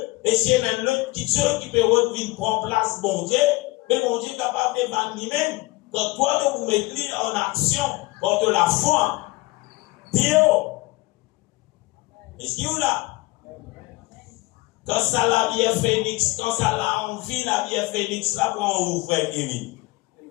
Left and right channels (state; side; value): quieter; right; 21.8 dB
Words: Et s'il y a même l'autre petite chose qui peut revenir prendre place, bon Dieu, mais bon Dieu est capable de vendre lui-même. Quand toi, tu vous mettez en action contre la foi. Dieu. Est-ce qu'il y a là? Quand ça la vie est phénix, quand ça la envie, la vie est phénix, là, pour en ouvrir Kevin.